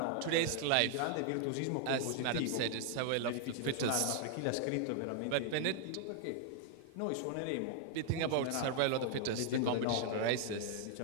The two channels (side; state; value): both; different; correlation 0.00